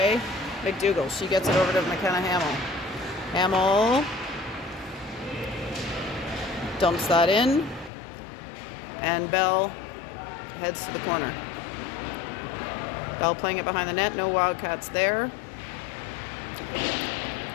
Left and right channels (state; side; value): drops out; right; at 7.9 s